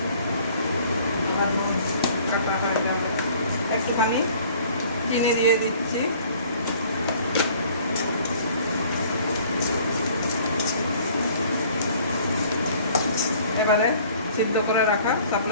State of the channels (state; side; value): inverted; both; correlation -0.54